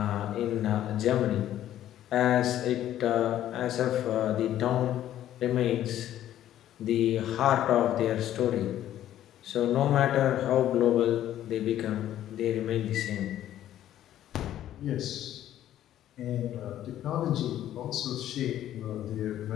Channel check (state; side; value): quieter; right; 12.2 dB